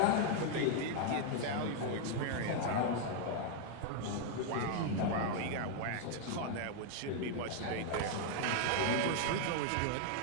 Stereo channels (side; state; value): both; different; correlation 0.00